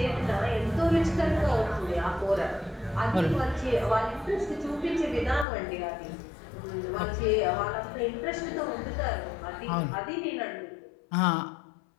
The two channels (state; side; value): drops out; right; at 5.5 s